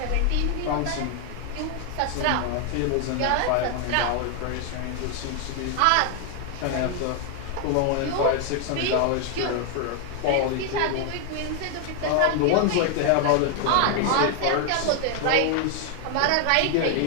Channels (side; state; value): both; different; correlation 0.00